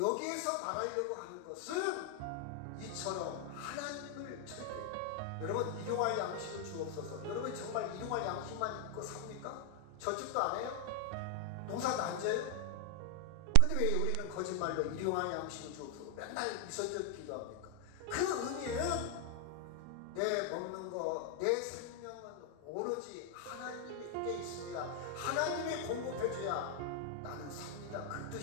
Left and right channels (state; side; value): different; both; correlation 0.00